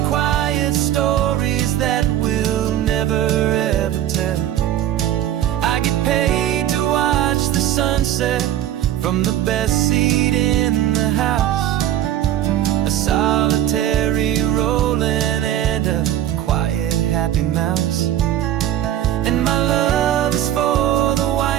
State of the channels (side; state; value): left; quieter; 11.9 dB